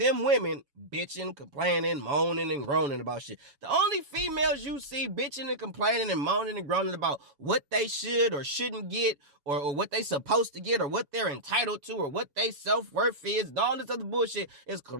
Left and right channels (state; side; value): late; left; 7.1 ms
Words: women bitching, complaining, moaning, and groaning about shit. The only females you see bitching and complaining and moaning and groaning about what they should or shouldn't get or what they supposed to get or what they're entitled to or what they self-worth is and all this other bullshit is